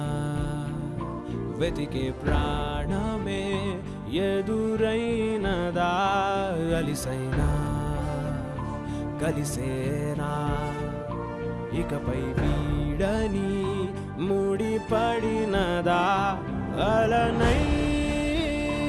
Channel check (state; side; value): identical; both; correlation 1.00